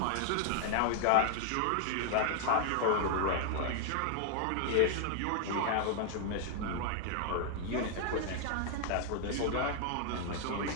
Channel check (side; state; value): both; different; correlation 0.00